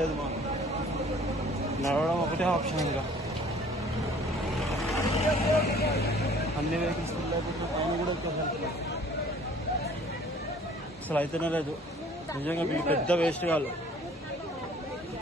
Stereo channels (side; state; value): both; normal; correlation 0.53